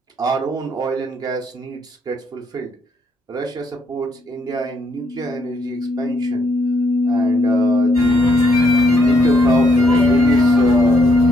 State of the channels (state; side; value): normal; both; correlation 0.73